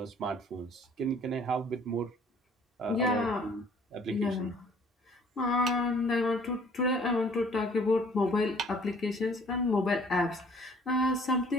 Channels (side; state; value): both; normal; correlation 0.55